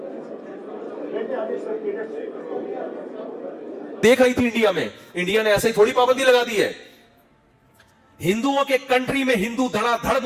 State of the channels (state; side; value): identical; both; correlation 1.00